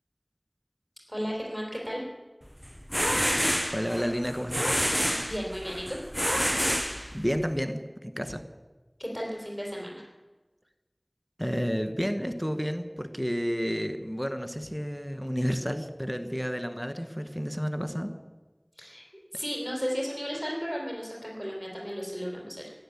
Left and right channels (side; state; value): both; identical; correlation 1.00